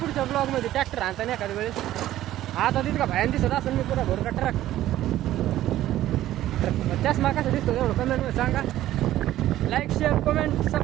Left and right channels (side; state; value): left; quieter; 13.9 dB